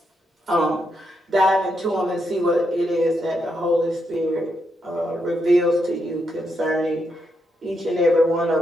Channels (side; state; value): both; normal; correlation 0.81